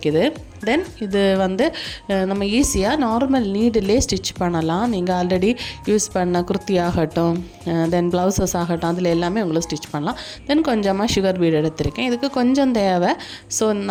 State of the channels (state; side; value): identical; both; correlation 1.00